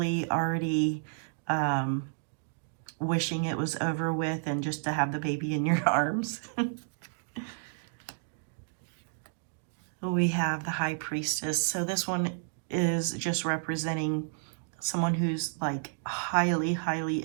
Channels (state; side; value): silent; left; digital silence